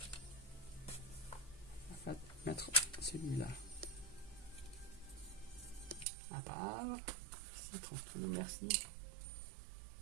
On va mettre celui-là à part. Si, tranquille, merci.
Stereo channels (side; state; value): left; drops out; at 6.1 s